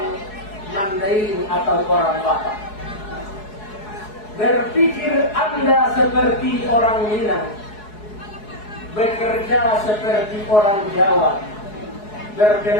Mandarin atau orang Batak. Berpikir Anda seperti orang Minang. Bekerja seperti orang Jawa.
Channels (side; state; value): right; late; 4.7 ms